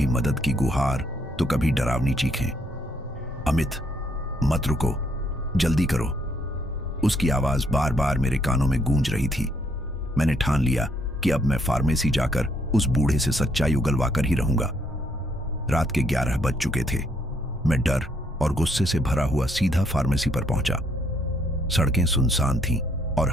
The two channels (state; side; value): normal; both; correlation 0.70